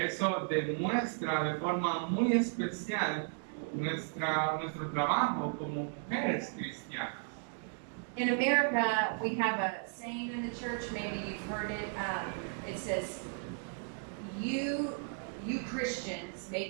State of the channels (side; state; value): left; silent; 54 dB below the other